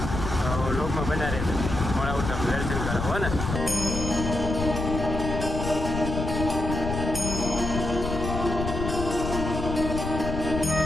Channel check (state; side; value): noise; left; rumble, 4 dB below the sound